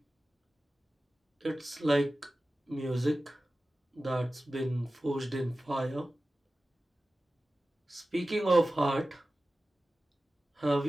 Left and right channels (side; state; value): both; normal; correlation 0.95